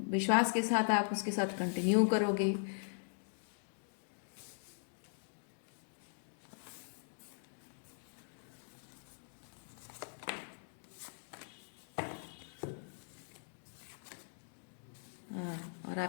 विश्वास के साथ आप उसके साथ कंटिन्यू करोगे। हाँ, और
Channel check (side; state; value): right; silent; digital silence